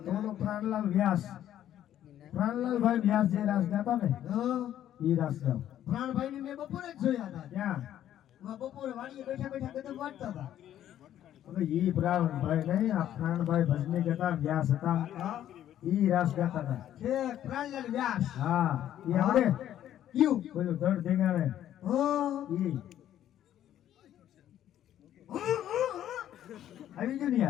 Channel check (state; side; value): quieter; right; 11.5 dB